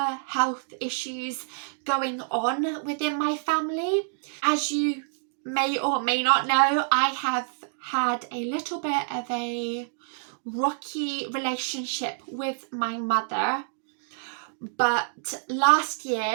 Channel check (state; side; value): silent; left; digital silence